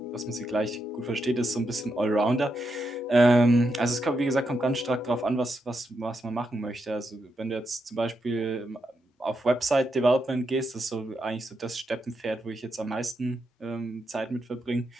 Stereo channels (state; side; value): normal; both; correlation 0.83